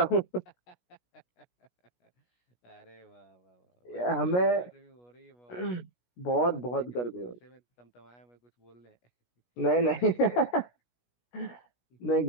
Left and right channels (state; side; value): late; right; 17 ms